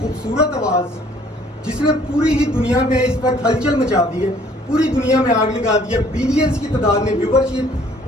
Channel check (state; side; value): normal; both; correlation 0.59